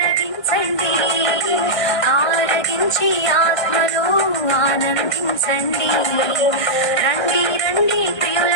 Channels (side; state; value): right; late; 1.5 ms